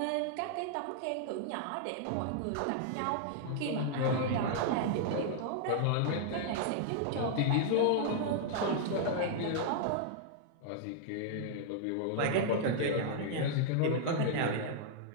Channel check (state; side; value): different; both; correlation -0.01